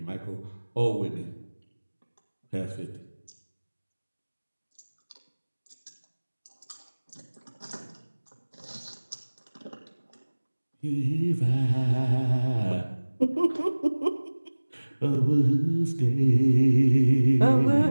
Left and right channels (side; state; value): both; inverted; correlation -1.00